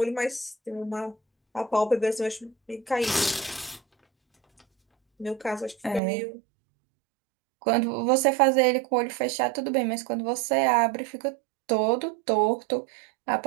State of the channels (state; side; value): drops out; left; at 6.0 s